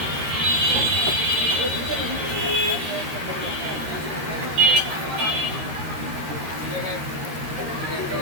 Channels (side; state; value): left; late; 13 ms